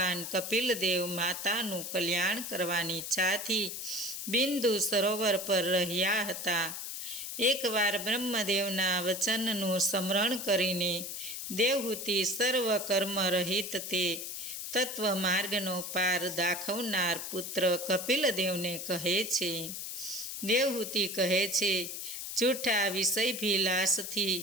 કપિલદેવ માતાનું કલ્યાણ કરવાની ઈચ્છાથી બિંદુ સરોવર પર રહ્યા હતા. એકવાર બ્રહ્મદેવના વચનનું સ્મરણ કરીને દેવહૂતિ સર્વ કર્મ રહિત તે તત્વ માર્ગનો પાર દાખવનાર પુત્ર કપિલદેવને કહે છે. દેવહૂતિ કહે છે, જૂઠા વિષયભિલાષથી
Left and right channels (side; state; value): left; noise; hiss, 6 dB below the sound